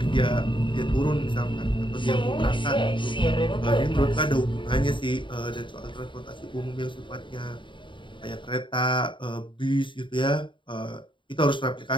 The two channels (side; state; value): right; late; 0.24 ms